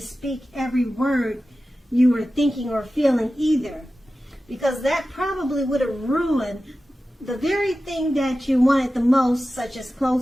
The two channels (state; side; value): normal; both; correlation 0.94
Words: every word you were thinking or feeling either, because that probably would have ruined the very thing that you wanted the most, such as